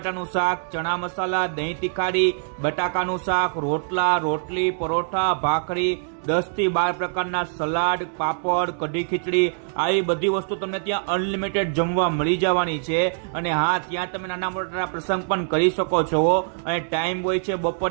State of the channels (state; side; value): silent; left; digital silence